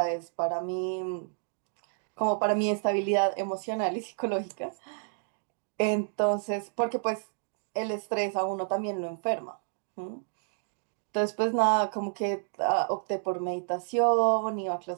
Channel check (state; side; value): silent; left; digital silence